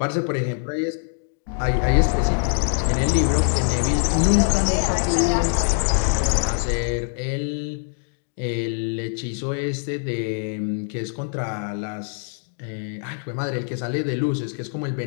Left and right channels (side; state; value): right; silent; 63 dB below the other